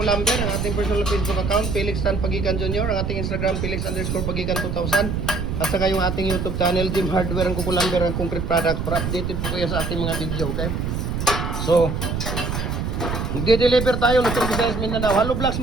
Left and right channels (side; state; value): right; noise; rumble, 2 dB below the sound